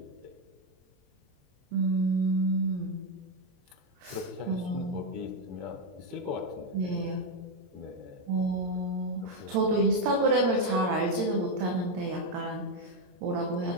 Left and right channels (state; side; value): late; left; 22 ms